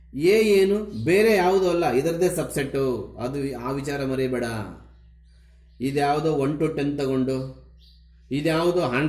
ಎ ಏನು? ಬೇರೆ ಯಾವುದೂ ಅಲ್ಲ, ಇದರದೇ ಸಬ್ಸೆಟ್ಟು. ಅದು ಆ ವಿಚಾರ ಮರಿಬೇಡ. ಇದ್ಯಾವುದೋ 1 to 10 ತಗೊಂಡು, ಇದ್ಯಾವುದೋ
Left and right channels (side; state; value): both; identical; correlation 1.00